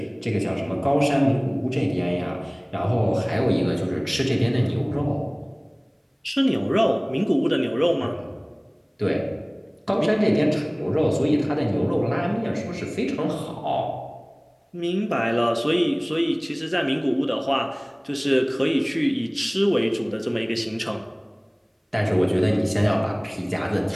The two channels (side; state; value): both; identical; correlation 1.00